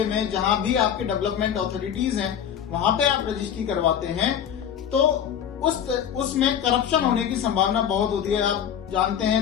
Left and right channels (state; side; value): quieter; right; 9.0 dB